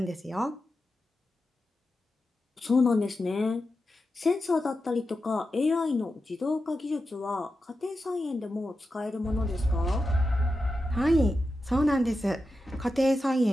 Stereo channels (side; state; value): both; normal; correlation 0.90